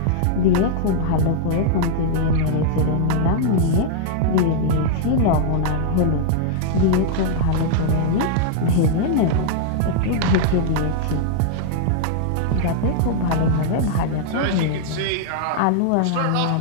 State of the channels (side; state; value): both; different; correlation -0.01